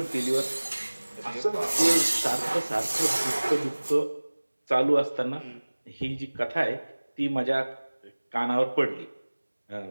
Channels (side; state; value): both; inverted; correlation -1.00